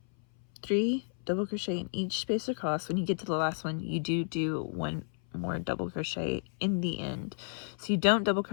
3 double crochet in each space across. When you get to the last one, you do 1 more double crochet in the end. So you don't double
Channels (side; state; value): right; silent; 57 dB below the other